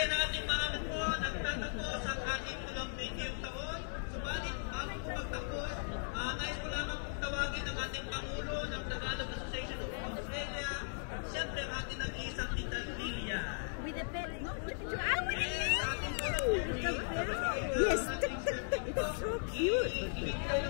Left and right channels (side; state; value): right; silent; digital silence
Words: ang ating mga po nagtatapos ang ating 20 taon. Subalit, bago po magtapos, nais ko lamang pong tawagin ang ating Pangulo ng Tagalog Association of Australia, siyempre ang ating nag-iisang Tita Lilia. With the bed. No, Yes, it's so cute. Ibigay